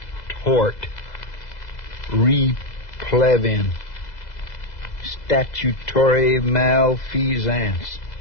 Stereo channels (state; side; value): late; right; 2.0 ms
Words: Tort. Replevin. Statutory malfeasance.